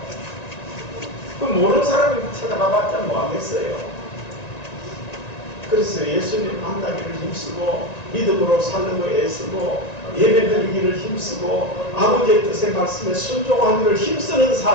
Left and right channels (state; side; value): late; right; 1.9 ms